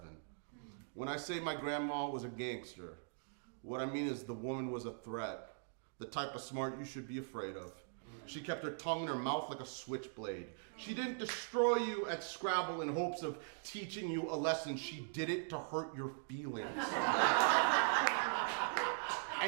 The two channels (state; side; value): silent; left; digital silence